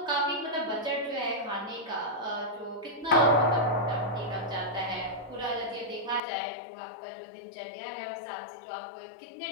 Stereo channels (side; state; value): right; drops out; at 6.2 s